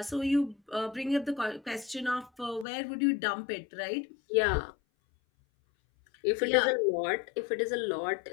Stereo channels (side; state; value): right; drops out; at 2.7 s